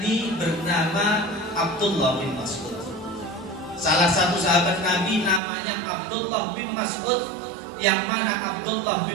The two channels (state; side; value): drops out; left; at 5.4 s